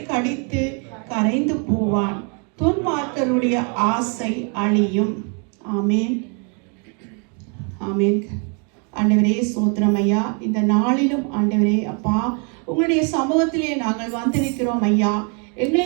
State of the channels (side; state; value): left; quieter; 37.6 dB